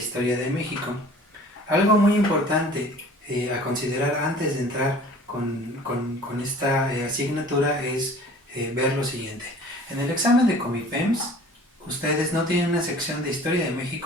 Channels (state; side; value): normal; both; correlation 0.47